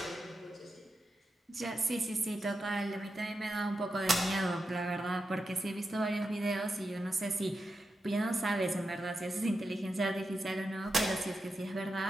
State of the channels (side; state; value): both; normal; correlation 0.88